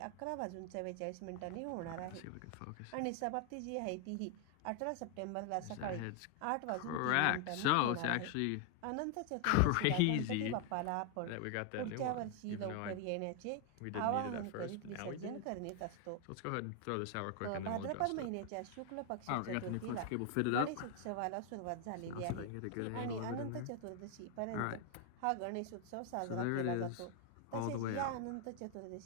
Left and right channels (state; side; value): different; both; correlation 0.00